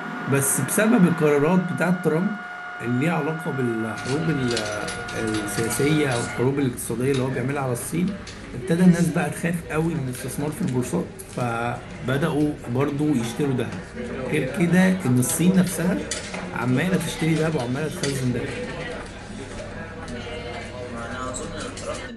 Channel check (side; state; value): both; identical; correlation 1.00